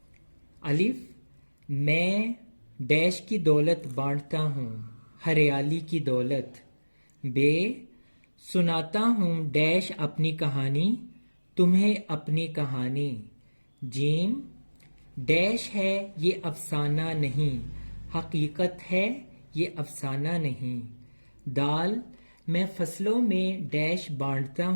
الف میں ڈیش کی دولت بانٹتا ہوں ہریالی کی دولت. بے سناتا ہوں ڈیش اپنی کہانی تمہیں اپنی کہانی. جیم ڈیش ہے یہ افسانہ نہیں حقیقت ہے یہ افسانہ نہیں. دال میں فصلوں میں ڈیش بانٹتا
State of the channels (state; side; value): inverted; both; correlation -1.00